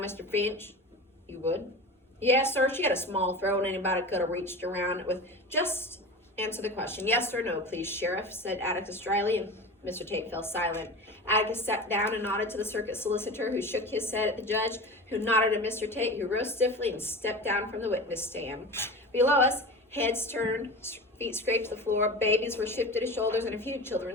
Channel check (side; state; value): both; normal; correlation 0.31